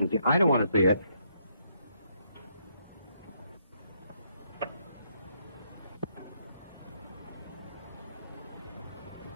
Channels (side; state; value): both; inverted; correlation -0.74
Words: I don't want to see her.